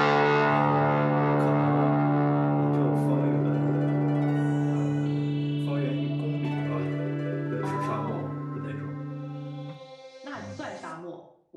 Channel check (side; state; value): both; identical; correlation 1.00